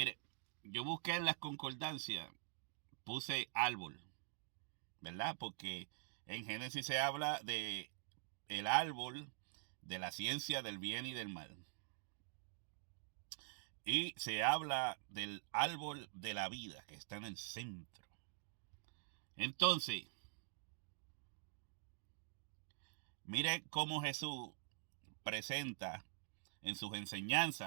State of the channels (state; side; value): silent; left; digital silence